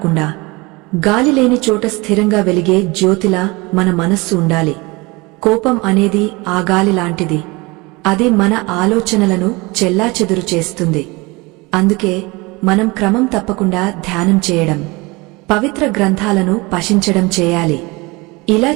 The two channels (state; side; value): quieter; left; 24.6 dB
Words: గాలి లేని చోట స్థిరంగా వెలిగే జ్యోతిలా మన మనస్సు ఉండాలి. కోపం అనేది ఆ గాలి లాంటిది. అది మన ఆలోచనలను చెల్లాచెదురు చేస్తుంది. అందుకే మనం క్రమం తప్పకుండా ధ్యానం చేయడం, పవిత్ర గ్రంథాలను పఠించడం చేయాలి. ఇలా